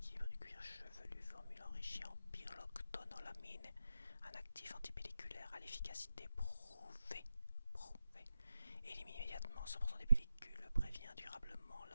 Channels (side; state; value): both; inverted; correlation -0.90